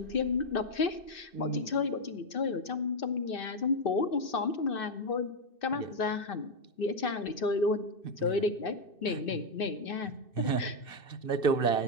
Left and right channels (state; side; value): late; right; 2.6 ms